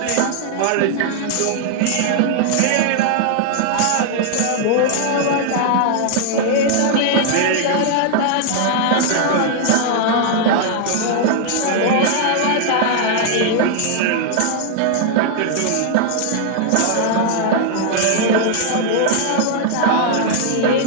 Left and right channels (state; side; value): different; both; correlation 0.00